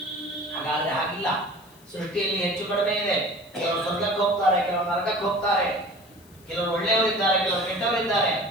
ಹಾಗಾದ್ರೆ ಹಾಗಿಲ್ಲ. ಸೃಷ್ಟಿಯಲ್ಲಿ ಹೆಚ್ಚು ಕಡಿಮೆ ಇದೆ. ಕೆಲವರು ಸ್ವರ್ಗಕ್ಕೆ ಹೋಗ್ತಾರೆ, ಕೆಲವರು ನರಕಕ್ಕೆ ಹೋಗ್ತಾರೆ, ಕೆಲವರು ಒಳ್ಳೆಯವರಿದ್ದಾರೆ, ಕೆಲವರು ಕೆಟ್ಟವರಿದ್ದಾರೆ.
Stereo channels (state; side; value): noise; left; hiss, 27 dB below the sound